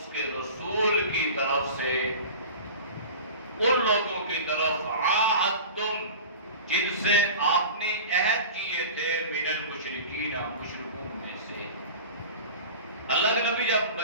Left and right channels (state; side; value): inverted; both; correlation -0.36